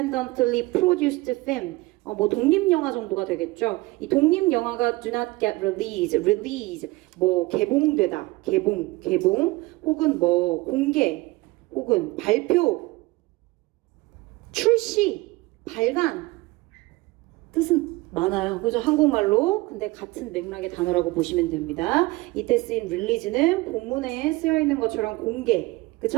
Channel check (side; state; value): left; quieter; 21.3 dB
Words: produced film, 뭐 독립영화 정도가 되겠죠. 이 독립영화가 do not get release, 뭐 개봉되다, 개봉, 혹은 뭐 공개, 혹은 발표, 출시, 발간 뜻은 많아요. 그죠? 한국말로. 근데 같은 맥락의 단어라고 보시면 됩니다. 이때 쓰인 release는 본문에 쓰여 있는 것처럼 공개,